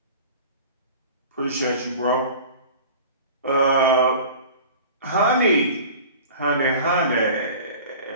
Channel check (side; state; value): both; inverted; correlation -0.40